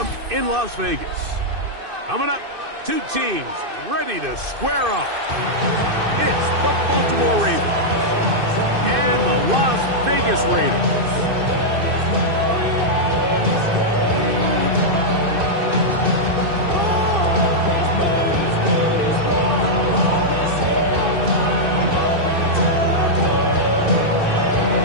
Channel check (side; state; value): left; late; 2.6 ms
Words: in Las Vegas. Coming up, two teams ready to square off. It's the Baltimore Ravens and the Las Vegas Raiders.